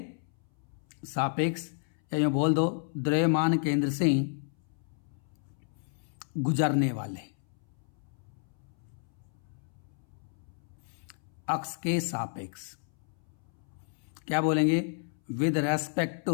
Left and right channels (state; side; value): silent; right; 57 dB below the other